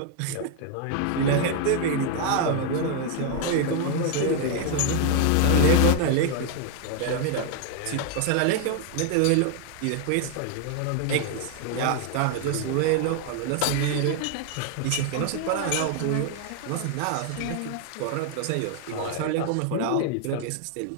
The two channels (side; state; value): both; different; correlation 0.00